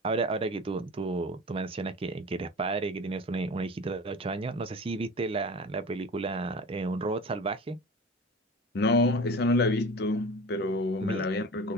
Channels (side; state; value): both; normal; correlation 0.35